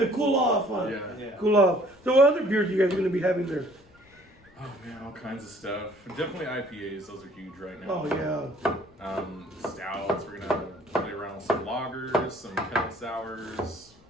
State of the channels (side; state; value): left; noise; rumble, 28 dB below the sound